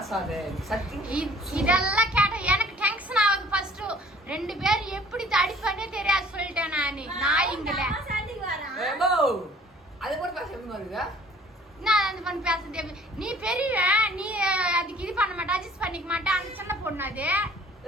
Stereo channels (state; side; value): normal; both; correlation 0.53